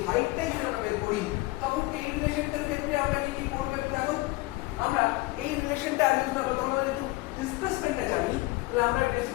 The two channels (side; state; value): right; quieter; 21.4 dB